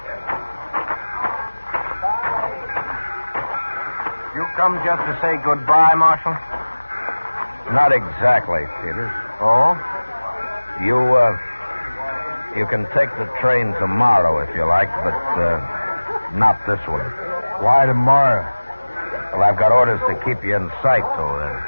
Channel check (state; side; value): inverted; both; correlation -1.00